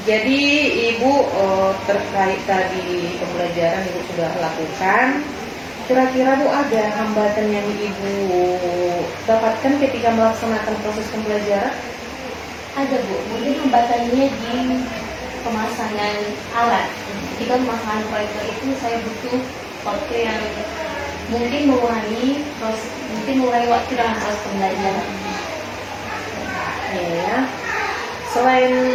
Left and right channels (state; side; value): identical; both; correlation 1.00